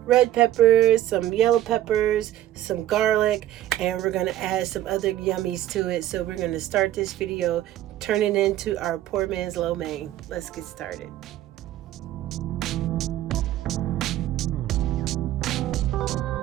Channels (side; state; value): left; quieter; 13.4 dB